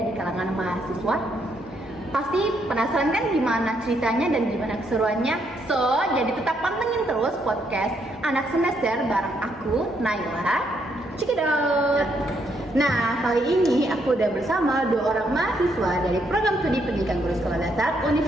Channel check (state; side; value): normal; both; correlation 0.74